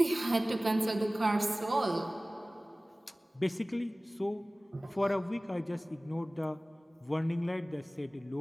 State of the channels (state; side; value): normal; both; correlation 0.98